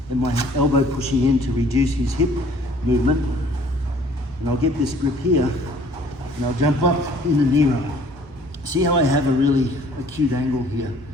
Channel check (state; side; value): normal; both; correlation 0.56